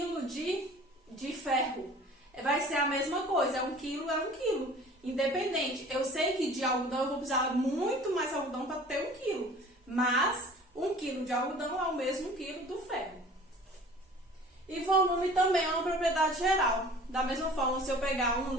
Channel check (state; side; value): normal; both; correlation 0.46